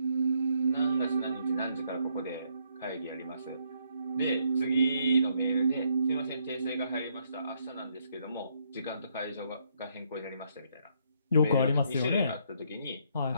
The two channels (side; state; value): both; inverted; correlation -0.72